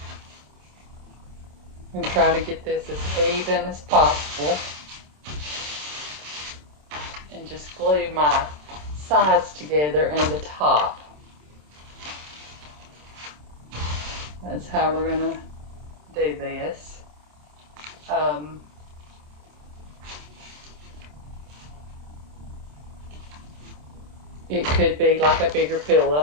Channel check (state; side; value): late; left; 27 ms